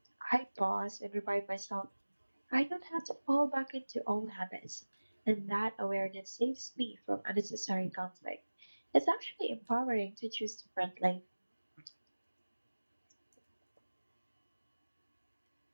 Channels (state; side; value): inverted; both; correlation -1.00